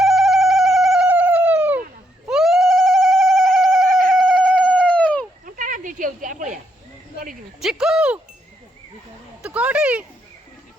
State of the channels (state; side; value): normal; both; correlation 0.77